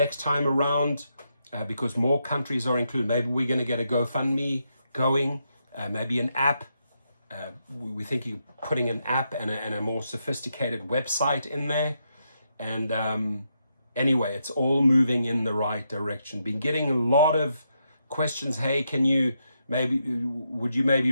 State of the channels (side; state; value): both; inverted; correlation -0.81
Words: time around, because more countries are included, maybe we're going to get a GoFundMe going, maybe an app. We're thinking putting an app and a more sophisticated website in there. And anyway, it's all moving in the right direction. Been getting a lot of questions. Hey, would you maybe